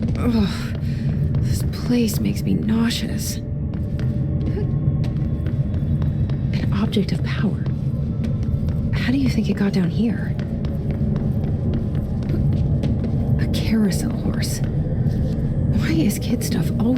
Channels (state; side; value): identical; both; correlation 1.00